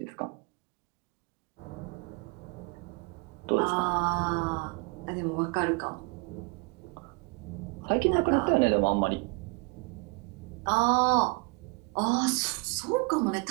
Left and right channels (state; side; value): quieter; left; 30.4 dB